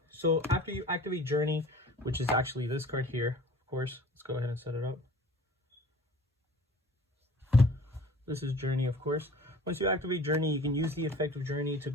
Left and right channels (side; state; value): both; normal; correlation 0.46